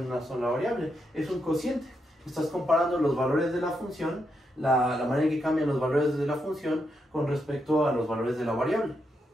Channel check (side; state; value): both; normal; correlation 0.82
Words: una sola variable. Es un cociente. Estás comparando los valores de la función, la manera en que cambian los valores de la función con respecto a los valores de la variable.